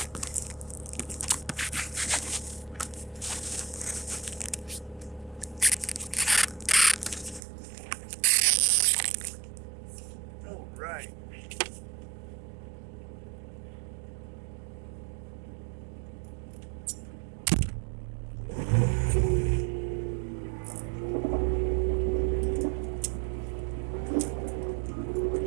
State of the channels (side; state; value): left; drops out; at 7.4 s